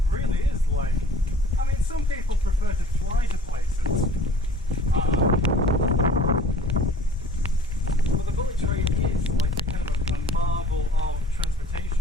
really is like. I mean, some people prefer to fly to places, but the bullet train is like a kind of a marvel of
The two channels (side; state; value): both; normal; correlation 0.48